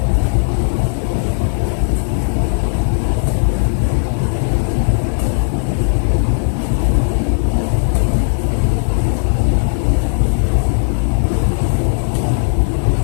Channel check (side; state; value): right; silent; digital silence